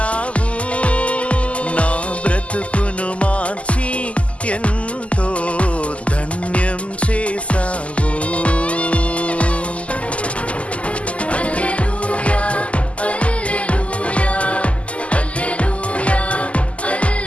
నా బ్రతుకును మార్చి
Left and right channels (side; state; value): right; late; 0.062 ms